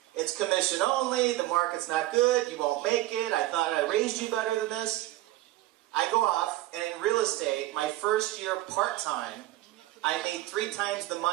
It's commission only, the market's not good, you won't make it, I thought I raised you better than this. I go off, and in real estate, my first year part-time, I made 3 times the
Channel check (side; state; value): left; quieter; 16.4 dB